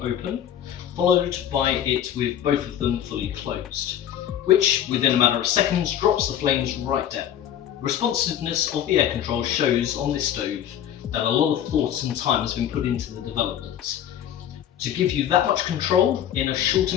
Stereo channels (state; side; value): quieter; right; 10.4 dB